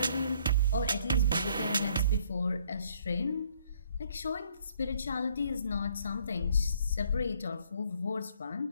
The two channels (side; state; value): both; inverted; correlation -0.64